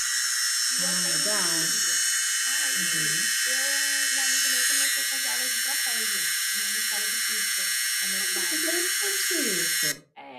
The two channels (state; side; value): identical; both; correlation 1.00